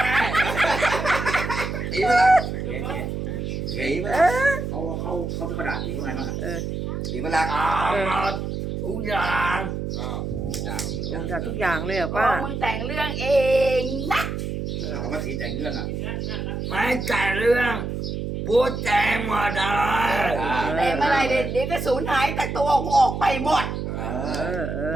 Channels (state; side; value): noise; right; hum, 4 dB below the sound